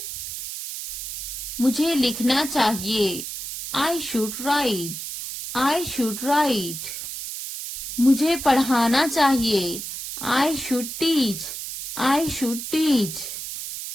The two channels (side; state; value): right; noise; hiss, 7 dB below the sound